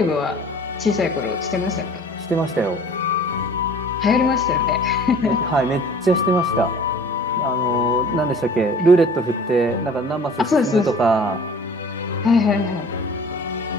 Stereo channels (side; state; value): both; normal; correlation 0.47